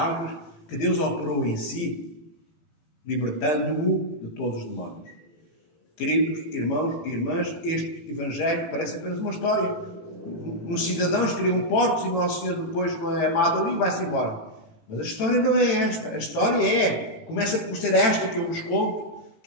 que Deus operou em si, libertando-o de todos os demónios. Queridos irmãos e irmãs, este Evangelho parece apenas uma história. Os cidadãos criam porcos e Nosso Senhor depois não é amado ali e vai-se embora. Mas a história não é esta. A história começa por ser esta que eu vos conto,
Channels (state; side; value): late; right; 18 ms